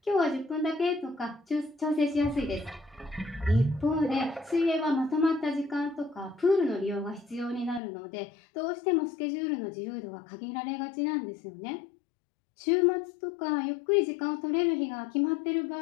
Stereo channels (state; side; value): drops out; right; at 7.8 s